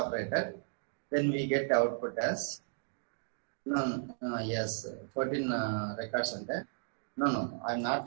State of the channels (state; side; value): silent; left; digital silence